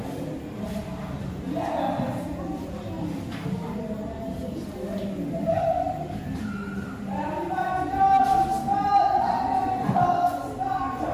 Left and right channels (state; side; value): identical; both; correlation 1.00